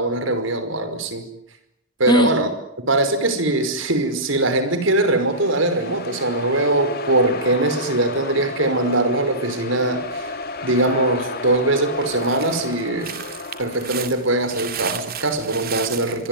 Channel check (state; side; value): normal; both; correlation -0.19